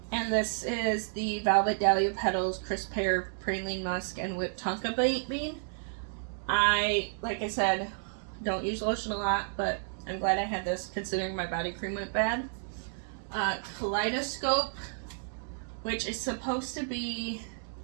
And this is the Velvet Dahlia Petals, Crisp Pear, Praline Musk, and Whipped Tonka Bean. Like I said, don't use lotion a lot, but I'm glad I had this considering my body cream went bad. Kaleidoscope, which is supposed to be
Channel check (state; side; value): silent; left; digital silence